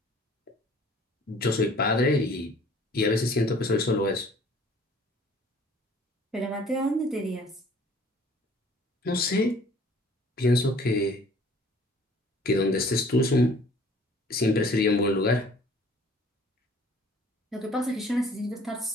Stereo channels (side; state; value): both; normal; correlation 0.53